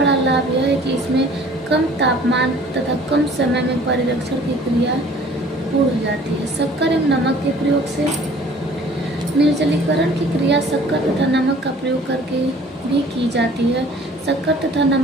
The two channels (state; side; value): normal; both; correlation 0.51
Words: लाभ यह है कि इसमें कम तापमान तथा कम समय में परिरक्षण की क्रिया पूर्ण हो जाती है। शक्कर एवं नमक के प्रयोग से निर्जलीकरण की क्रिया शक्कर तथा नमक का प्रयोग करके भी की जाती है। शक्कर तथा